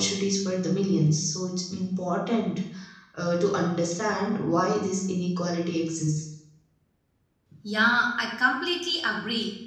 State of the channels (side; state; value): both; identical; correlation 1.00